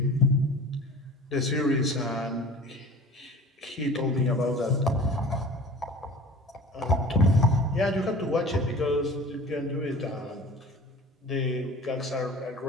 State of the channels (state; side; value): normal; both; correlation 0.41